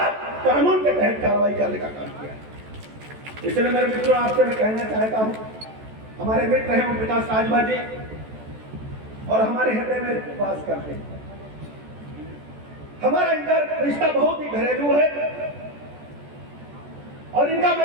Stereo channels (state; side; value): late; left; 14 ms